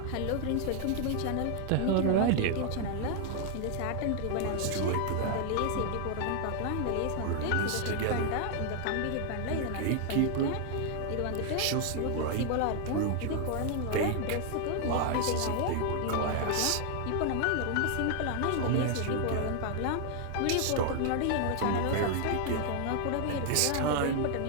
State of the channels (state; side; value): different; both; correlation 0.00